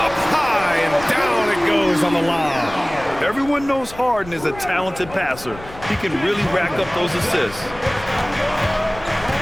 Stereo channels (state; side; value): noise; left; rumble, 17 dB below the sound